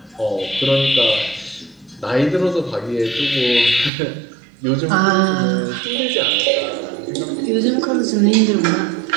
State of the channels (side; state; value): left; drops out; at 3.9 s